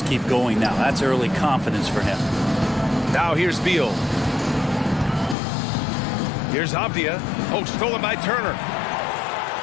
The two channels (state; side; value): drops out; right; at 5.4 s